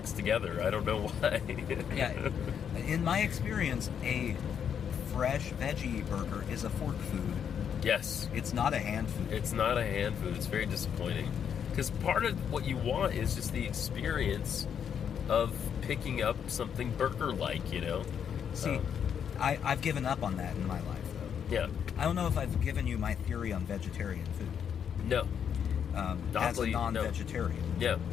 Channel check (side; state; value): right; quieter; 8.0 dB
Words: together. I don't know why. Yeah. In my experience, a fresh veggie burger is a fork food. Yes. It's not a hand food. It's not a hand food. It's very disappointing. Because part of what you want is just the experience of picking up something burger-like, you know? See, I've given up on that in my life, though. Yeah. I don't know if I've given you my theory on vegetarian food. No. As a Oddly, no. non-vegetarian. Yeah.